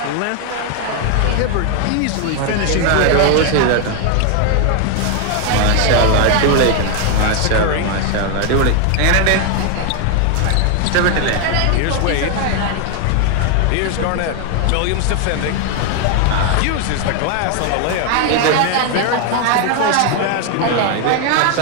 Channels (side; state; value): both; different; correlation 0.01